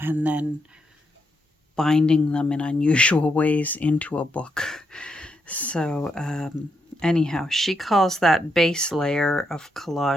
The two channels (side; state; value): both; normal; correlation 0.80